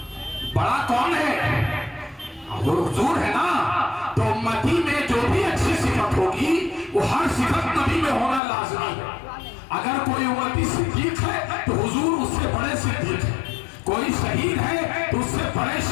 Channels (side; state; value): right; drops out; at 8.4 s